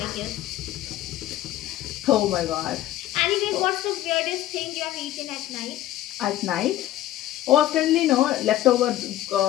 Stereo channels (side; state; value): right; quieter; 14.0 dB